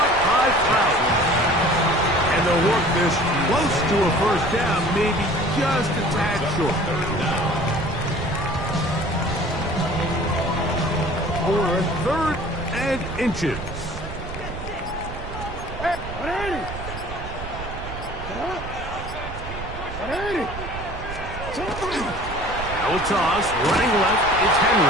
by Cloud. And they'll work this close to a first down, maybe just a tad short. For third and inches. Now a toss, running left, it's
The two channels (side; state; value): right; noise; rumble, 9 dB below the sound